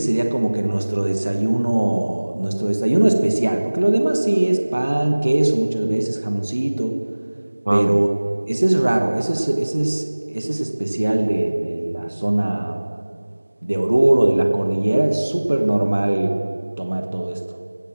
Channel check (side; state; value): both; inverted; correlation -1.00